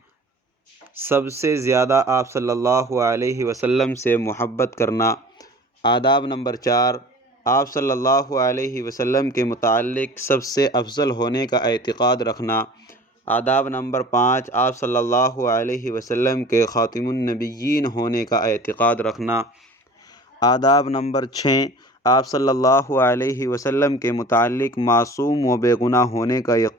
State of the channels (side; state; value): both; normal; correlation 0.43